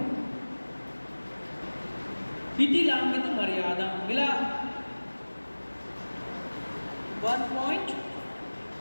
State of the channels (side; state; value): both; inverted; correlation -1.00